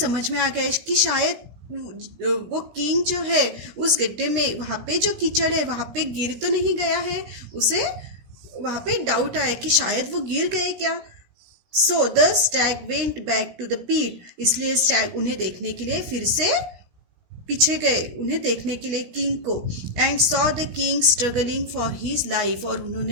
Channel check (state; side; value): late; left; 17 ms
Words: में आ गया कि शायद वो किंग जो है उस गड्ढे में, वहाँ पे जो कीचड़ है वहाँ पे गिर तो नहीं गया है. उसे वहाँ पे डाउट आया कि शायद वो गिर गए क्या. So the stag went back to the pit. इसलिए स्टैग उन्हें देखने के लिए फिर से पीछे गए, उन्हें देखने के लिए किंग को. And saw the king struggling for his life. और